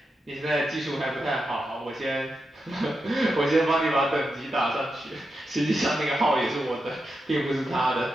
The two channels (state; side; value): normal; both; correlation 0.87